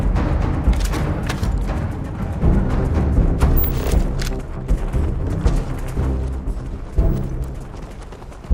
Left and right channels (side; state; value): both; identical; correlation 1.00